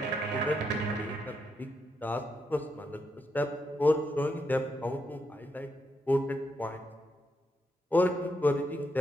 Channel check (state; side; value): normal; both; correlation 0.81